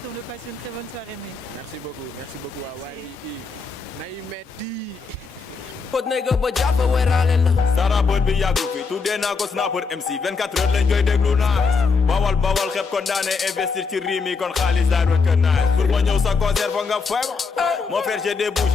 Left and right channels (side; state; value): right; quieter; 4.8 dB